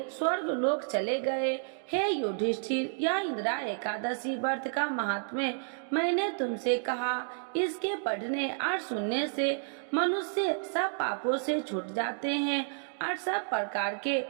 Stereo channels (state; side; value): silent; left; digital silence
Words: स्वर्ग लोक चले गए। हे युधिष्ठिर, यह इंदिरा एकादशी व्रत का महात्म्य मैंने तुमसे कहा। इसके पढ़ने और सुनने से मनुष्य सब पापों से छूट जाते हैं और सब प्रकार के